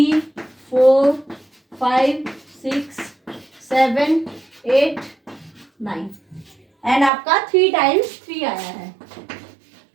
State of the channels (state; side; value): drops out; left; at 7.1 s